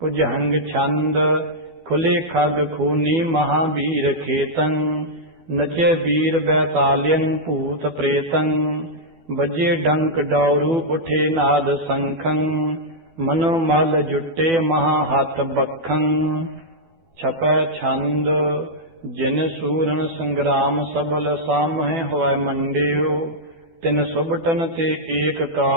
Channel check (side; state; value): left; late; 13 ms